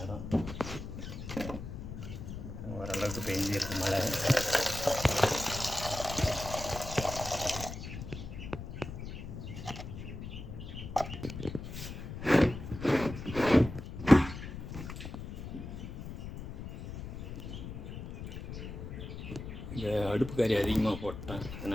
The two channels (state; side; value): noise; left; rumble, 9 dB below the sound